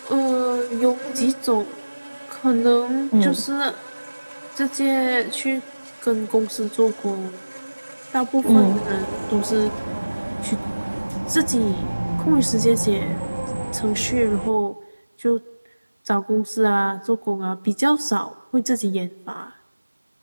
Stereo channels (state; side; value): inverted; both; correlation -1.00